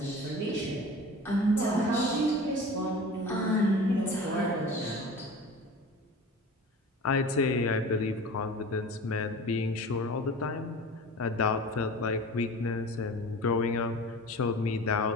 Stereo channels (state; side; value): normal; both; correlation 0.37